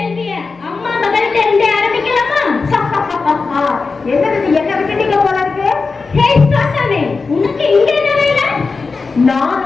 அம்மா மகள்கிட்ட இருந்தே ஆரம்பிக்கலாமா? என்ன விட்டுட்டீங்க போல இருக்கு. ஹே சாத்தானே, உனக்கு இங்க என்ன வேலை?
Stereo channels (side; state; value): right; quieter; 4.4 dB